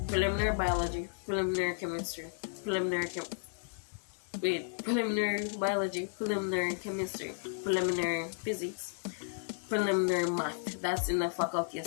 preliminary biology, preliminary chemistry, preliminary biology, preliminary chemistry, preliminary physics, preliminary math. That's in the Faculty of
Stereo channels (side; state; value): right; silent; 55 dB below the other